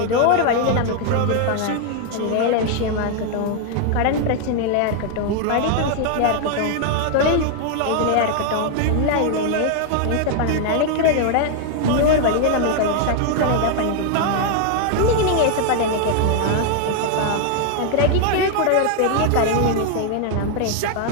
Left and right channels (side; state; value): both; different; correlation 0.00